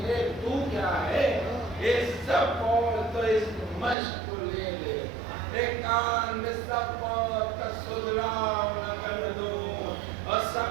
لے، تو کیا ہے یہ سب اور تو اس مشق کو لے لے، ایک کان میں سب اور کا سدراؤ نہ کر دوں، اور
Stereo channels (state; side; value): drops out; left; at 4.0 s